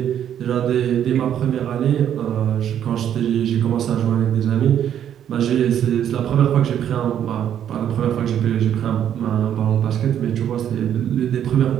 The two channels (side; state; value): left; quieter; 9.9 dB